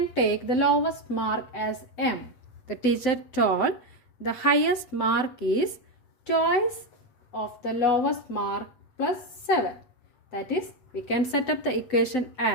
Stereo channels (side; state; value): right; late; 7.9 ms